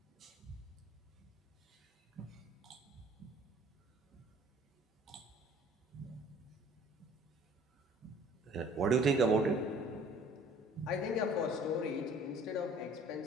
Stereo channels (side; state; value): both; normal; correlation 0.52